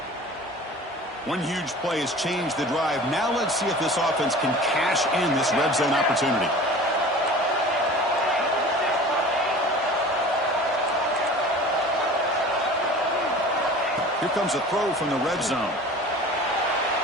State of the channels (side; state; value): both; normal; correlation 0.40